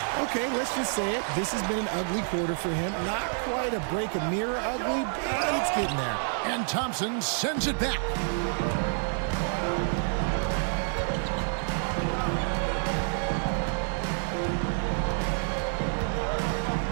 Okay, let's just say it. This has been an ugly quarter for him. Not quite a break a mirror ugly, but it's getting there. And Thompson sends it back.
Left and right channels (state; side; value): silent; left; 59 dB below the other